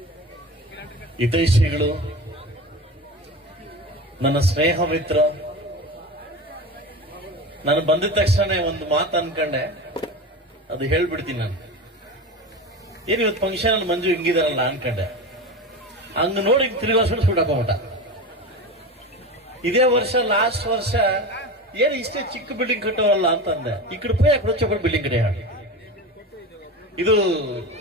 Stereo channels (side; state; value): both; normal; correlation 0.27